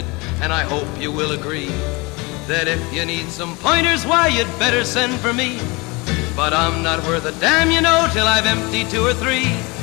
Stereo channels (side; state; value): right; quieter; 26.0 dB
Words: and I hope you will agree that if you need some pointers, why, you'd better send for me. But I'm not worth a damn, you know, till I've emptied 2 or 3